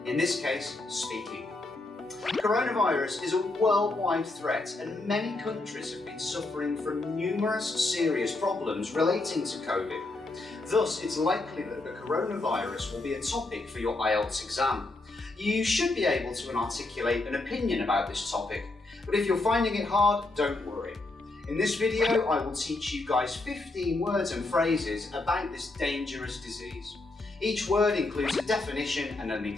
In this case, speaking. Coronavirus is a worldwide threat and many countries have been suffering from numerous serious problems relating to COVID. Thus, it's likely that the coronavirus will be a topic for your IELTS exam. You should be able to articulate an opinion about this topic, but if you're finding it hard, don't worry. In this video, I will teach you guys 15 words and phrases about this dangerous disease. Each word includes a definition and an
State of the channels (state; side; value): quieter; right; 3.0 dB